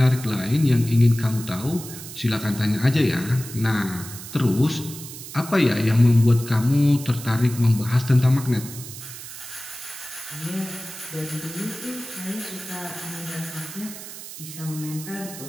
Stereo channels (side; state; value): right; noise; hiss, 12 dB below the sound